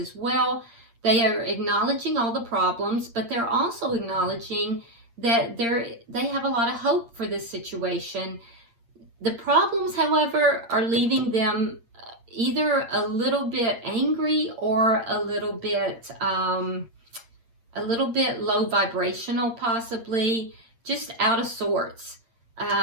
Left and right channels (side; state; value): left; late; 8.6 ms